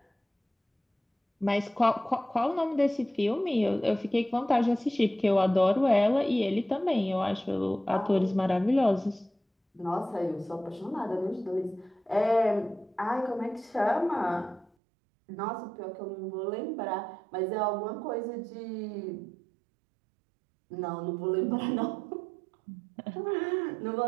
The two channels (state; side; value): drops out; left; at 14.7 s